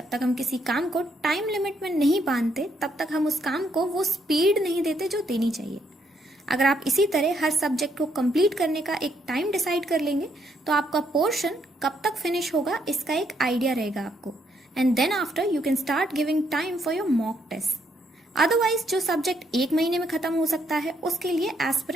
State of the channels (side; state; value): both; normal; correlation 0.73